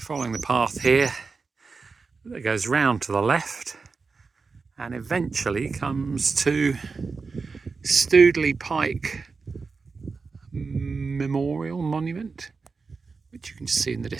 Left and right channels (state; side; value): quieter; left; 4.6 dB